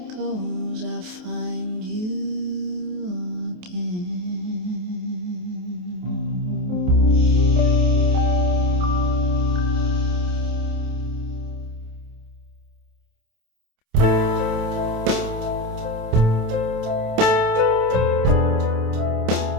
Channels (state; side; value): late; left; 28 ms